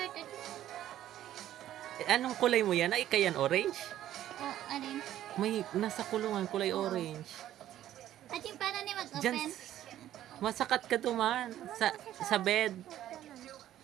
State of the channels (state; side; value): quieter; left; 12.5 dB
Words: Anong kulay mo yan? Ay, kayan orange? Oh, alin? May nasa kulungan kulay orange. At yung paano nila Diyan, mag-open? masakat ka duman sa bed.